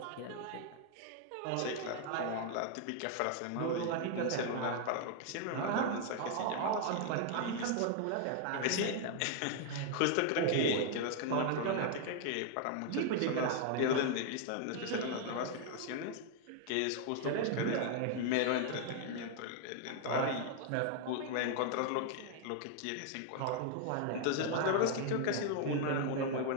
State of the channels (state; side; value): different; both; correlation 0.00